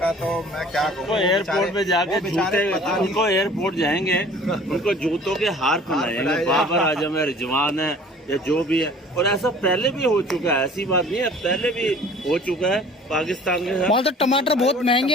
तो मैं क्या कहूँ, एयरपोर्ट में जाके जूते, उनको एयरपोर्ट जाएंगे, उनको जूतों के हार पहनाएंगे। बाबर आजम है, रिजवान है, या जो भी है। और ऐसा पहले भी हो चुका है, ऐसी बात नहीं है, पहले भी हो चुका है पाकिस्तान के साथ। वहाँ तो टमाटर बहुत महंगे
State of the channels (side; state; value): both; normal; correlation 0.49